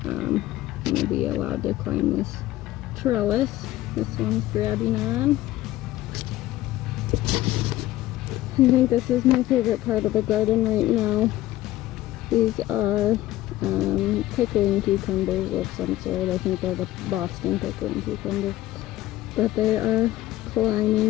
I'm going to be allowed to climb this trellis. This one's grabbing on. I think this is my favorite part of the garden right now. These are pickling cucumbers of some sort. I think they're the Boston pickling cucumbers. But they are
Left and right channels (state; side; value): quieter; right; 15.4 dB